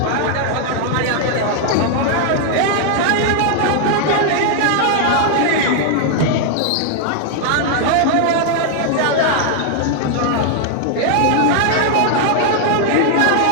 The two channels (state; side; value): different; both; correlation -0.01